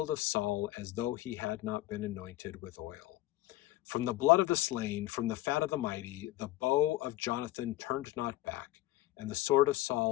of Saul, as though he had not been anointed with oil. From the blood of the slain, from the fat of the mighty, the bow of Jonathan turned not back, and the sword of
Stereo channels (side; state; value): right; quieter; 16.6 dB